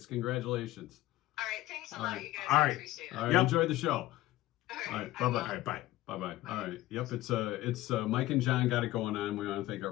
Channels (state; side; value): quieter; right; 16.5 dB